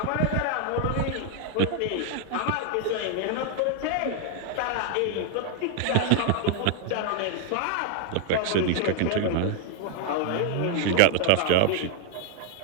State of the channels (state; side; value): different; both; correlation 0.00